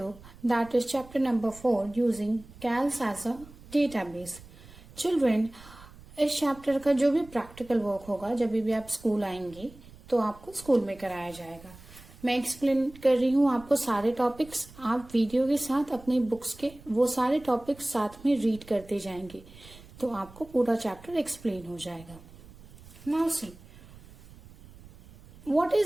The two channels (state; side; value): noise; right; rumble, 21 dB below the sound